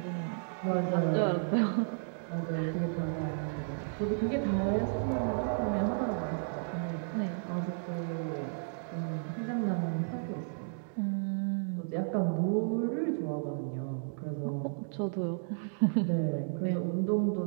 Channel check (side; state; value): left; silent; digital silence